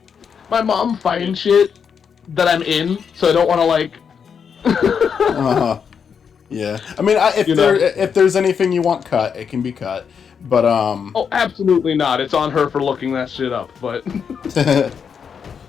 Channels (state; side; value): quieter; right; 6.8 dB